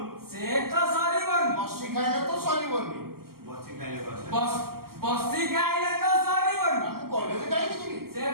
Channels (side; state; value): left; late; 0.93 ms